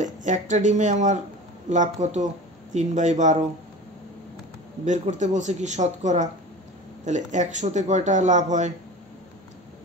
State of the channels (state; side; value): normal; both; correlation 0.35